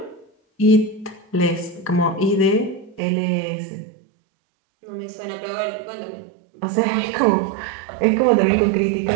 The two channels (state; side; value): drops out; left; at 3.0 s